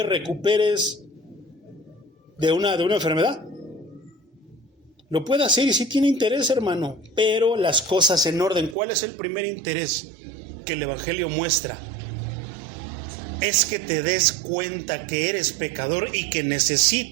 recuperes de una enfermedad. Lo puede hacer y sí tiene interés, hermano, pero las cosas en orden. ¿Cuál es el primer interés que el Evangelio muestra? Es que te des cuenta que eres pecador y que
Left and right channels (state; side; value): drops out; left; at 8.8 s